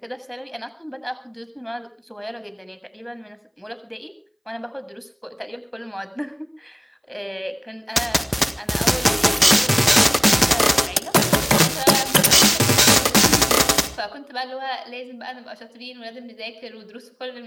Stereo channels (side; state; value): both; identical; correlation 1.00